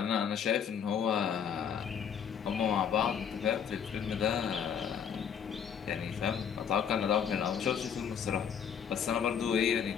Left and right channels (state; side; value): quieter; right; 7.8 dB